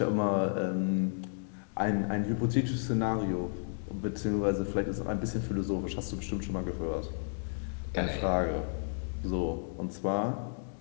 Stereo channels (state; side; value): silent; right; digital silence